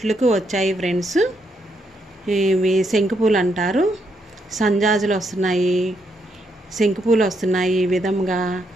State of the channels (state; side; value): normal; both; correlation 0.77